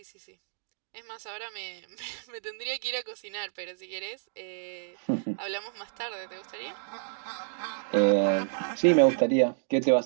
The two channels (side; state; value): left; silent; digital silence